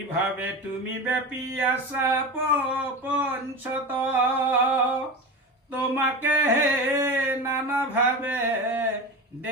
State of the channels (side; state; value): both; normal; correlation 0.26